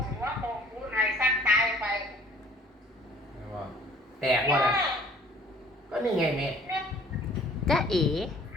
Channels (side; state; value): both; normal; correlation 0.54